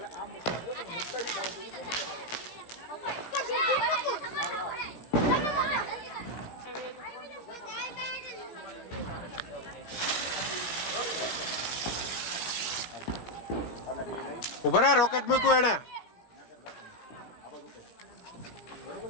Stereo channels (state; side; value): late; right; 17 ms